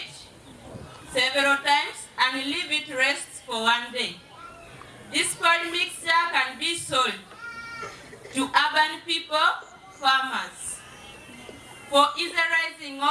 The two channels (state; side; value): identical; both; correlation 1.00